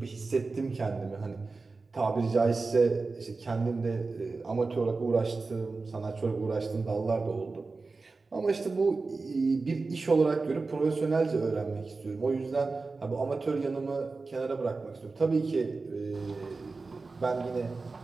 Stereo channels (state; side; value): quieter; left; 3.9 dB